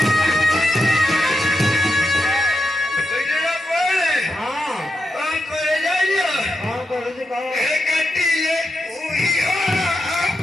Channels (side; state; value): both; normal; correlation 0.86